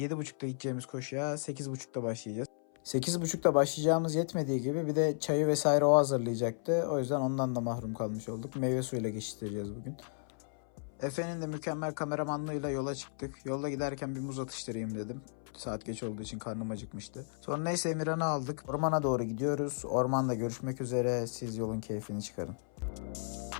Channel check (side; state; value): right; silent; 55 dB below the other